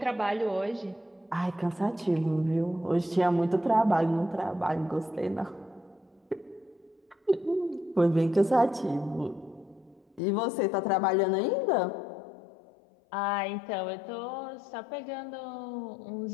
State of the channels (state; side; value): drops out; right; at 10.2 s